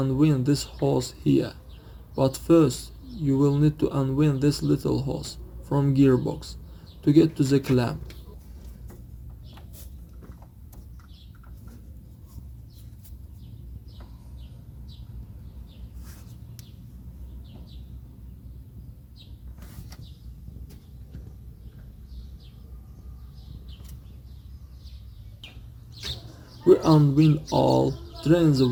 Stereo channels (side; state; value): both; identical; correlation 1.00